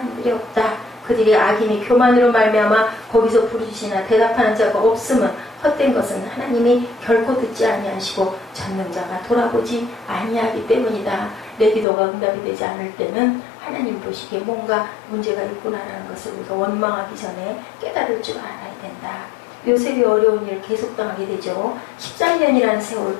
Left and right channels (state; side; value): drops out; right; at 11.9 s